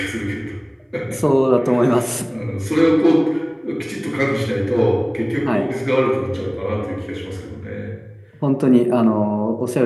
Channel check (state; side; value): identical; both; correlation 1.00